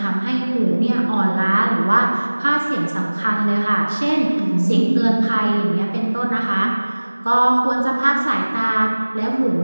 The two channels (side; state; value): both; inverted; correlation -1.00